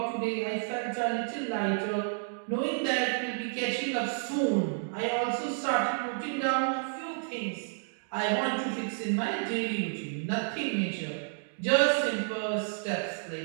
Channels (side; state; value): left; silent; digital silence